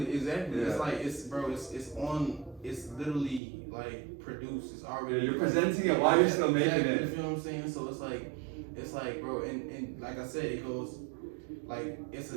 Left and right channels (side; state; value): left; drops out; at 3.4 s